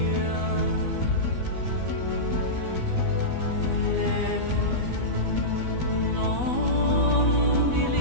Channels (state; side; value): late; left; 12 ms